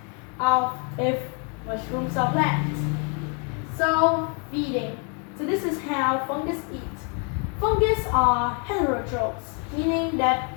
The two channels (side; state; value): right; quieter; 37.6 dB